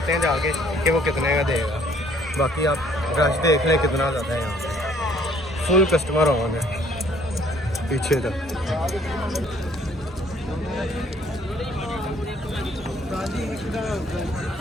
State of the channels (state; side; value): normal; both; correlation 0.61